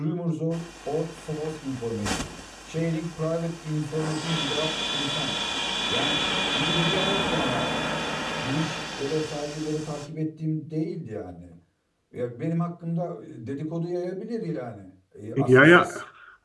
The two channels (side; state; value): both; identical; correlation 1.00